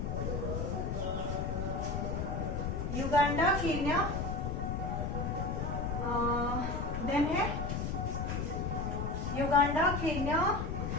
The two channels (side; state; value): left; noise; rumble, 2 dB below the sound